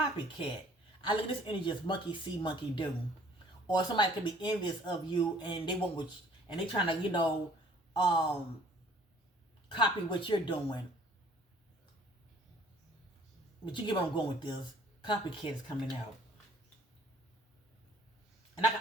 I look at this energy as monkey see, monkey do. Or somebody could be envious of you and they want what and they trying to, copy what you're doing. But you get where I'm going with this. Copycat is coming out. And I can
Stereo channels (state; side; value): normal; both; correlation 0.56